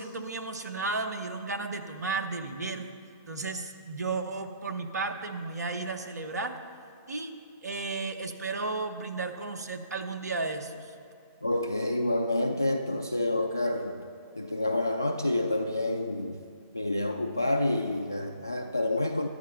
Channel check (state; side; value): inverted; both; correlation -0.69